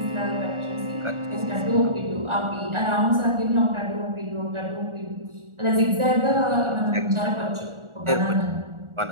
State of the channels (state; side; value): late; left; 1.4 ms